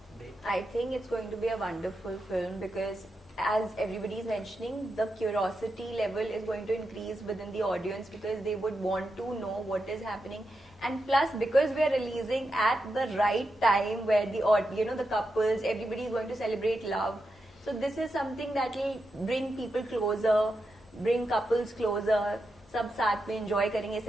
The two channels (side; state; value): both; normal; correlation 0.87